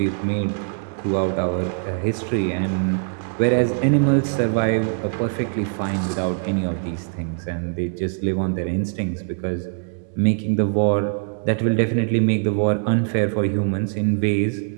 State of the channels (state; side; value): silent; left; digital silence